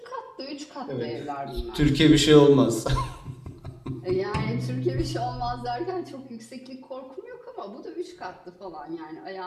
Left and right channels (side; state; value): both; identical; correlation 1.00